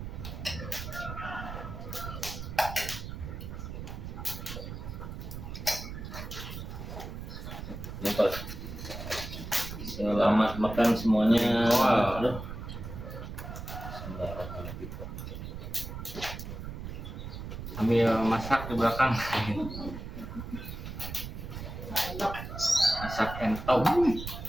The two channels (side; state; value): right; noise; rumble, 8 dB below the sound